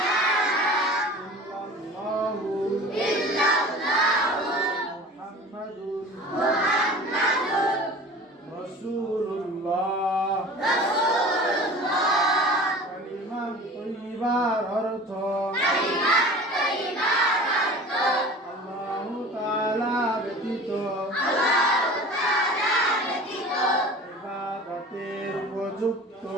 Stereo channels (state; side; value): normal; both; correlation 0.40